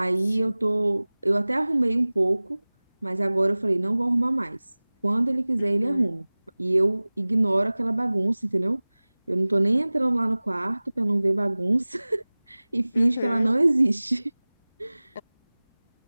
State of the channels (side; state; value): both; inverted; correlation -1.00